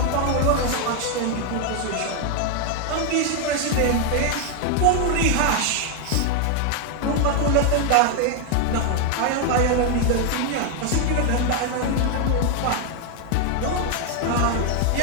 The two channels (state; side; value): different; both; correlation 0.01